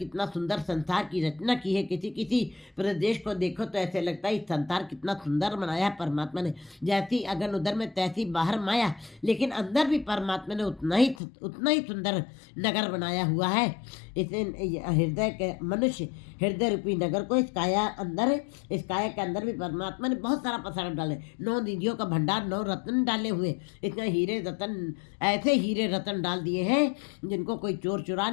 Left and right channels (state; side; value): drops out; right; at 11.2 s